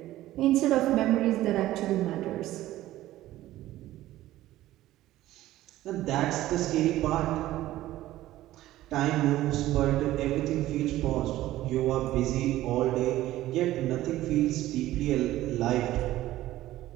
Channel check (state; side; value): quieter; left; 15.1 dB